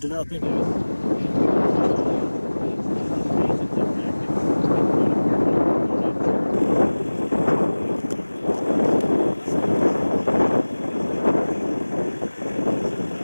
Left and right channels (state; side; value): inverted; both; correlation -1.00